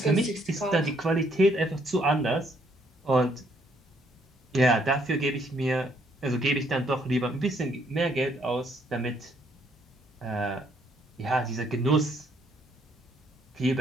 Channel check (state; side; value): normal; both; correlation 0.69